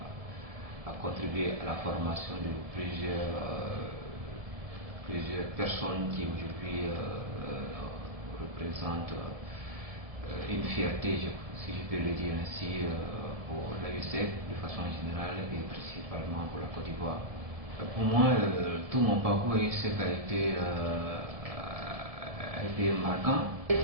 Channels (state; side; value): late; left; 1.7 ms